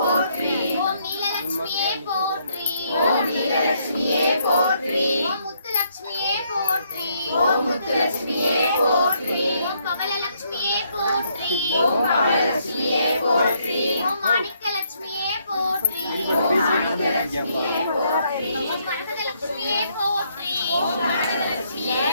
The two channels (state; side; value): inverted; both; correlation -0.72